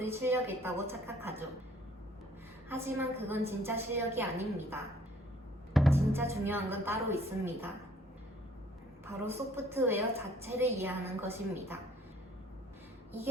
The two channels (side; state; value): both; normal; correlation 0.59